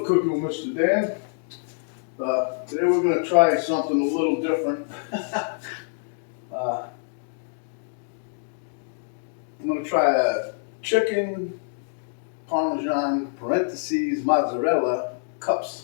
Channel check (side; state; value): right; silent; digital silence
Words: Cooking with Mr. Dan. Today we're going to try something a little different. I'm going to try a chicken Parmesan mozzarella cups.